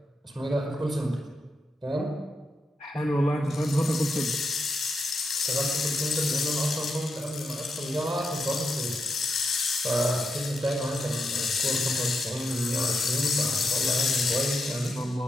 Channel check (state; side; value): normal; both; correlation 0.85